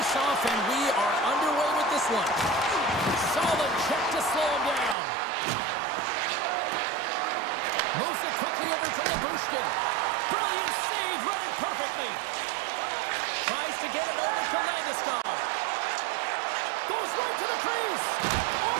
and we are underway with this one. Solid check to slow him down. Moves it quickly over to Labushkin. Brilliant save, read it perfectly. Tries to get it over to Landeskog. Goes right to the crease.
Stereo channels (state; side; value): drops out; left; at 5.0 s